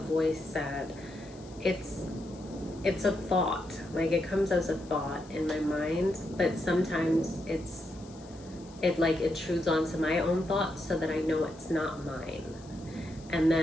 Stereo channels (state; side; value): noise; left; hiss, 24 dB below the sound